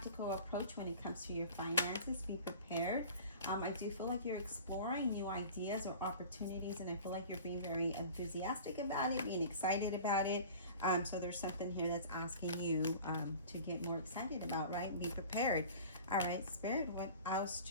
approach when it comes to your finances. Be prepared. I do feel like you're exploring new ideas or opportunities, and I feel like you're being very enthusiastic about it, being excited about it. So there's something here that's asking you to get more excited about, right? Be prepared. All right, Spirit, what else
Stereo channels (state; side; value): inverted; both; correlation -0.41